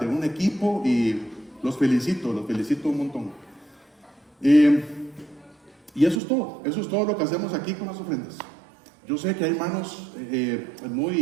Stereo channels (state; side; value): drops out; left; at 6.2 s